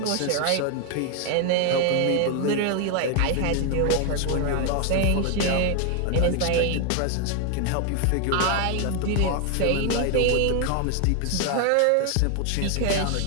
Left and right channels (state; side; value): different; both; correlation 0.01